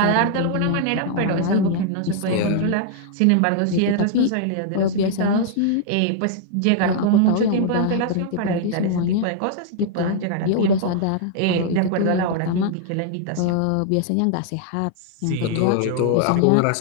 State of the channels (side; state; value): both; different; correlation -0.01